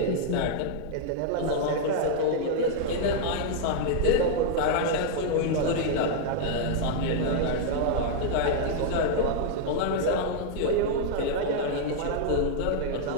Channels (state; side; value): different; both; correlation -0.01